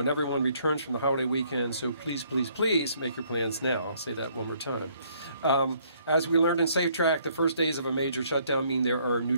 everyone returns from the holiday weekend. So please, please, please make your plans now. I'll say that one more time. As we learned in Safe Track, the first days of a major shutdown mean there are new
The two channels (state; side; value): inverted; both; correlation -0.65